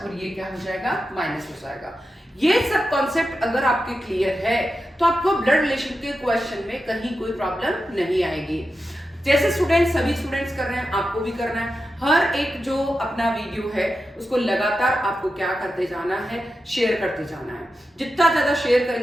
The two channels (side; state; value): both; normal; correlation 0.90